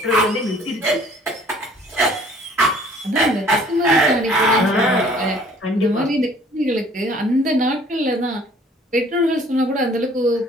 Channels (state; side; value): normal; both; correlation 0.55